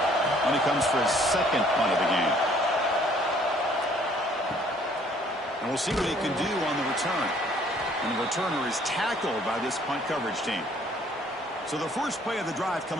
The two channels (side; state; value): both; normal; correlation 0.60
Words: And he comes for his 2nd punt of the game. And we'll see what he can do on the return. And the returner is tackled by this punt coverage team. So the first play of the drive